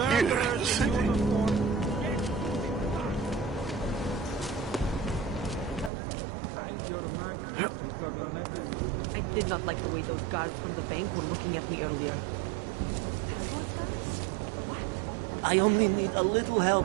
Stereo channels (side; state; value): left; drops out; at 5.9 s